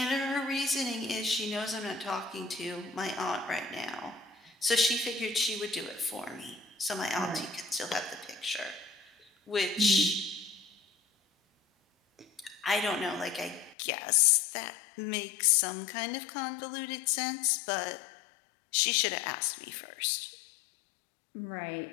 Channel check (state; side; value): drops out; right; at 13.8 s